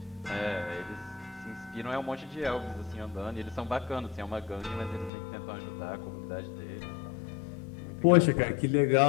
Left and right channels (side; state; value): right; drops out; at 5.1 s